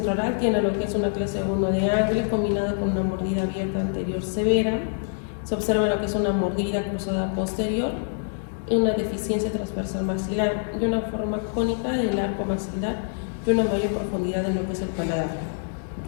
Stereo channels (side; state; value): right; silent; digital silence